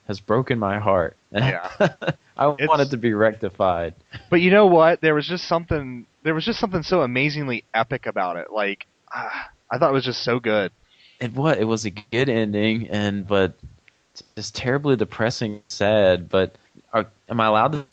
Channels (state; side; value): identical; both; correlation 1.00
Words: has broken my heart. And yeah. I want it It's to be rectified. But you know what? There was just something so amazingly epic about it. Like I thought it was just so good. It was a good ending, and but it's terribly depressing, sad. But am I allowed to